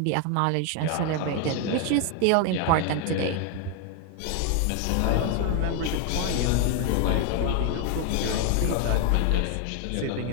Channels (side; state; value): both; different; correlation 0.01